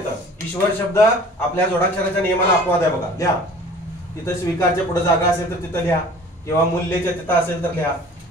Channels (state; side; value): normal; both; correlation 0.47